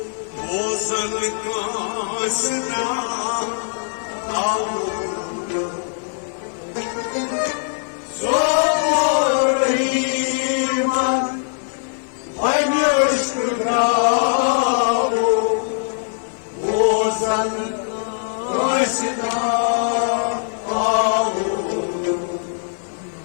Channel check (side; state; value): right; silent; 65 dB below the other